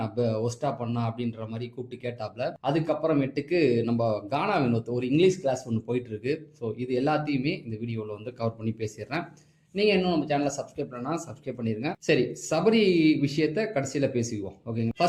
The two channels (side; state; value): both; identical; correlation 1.00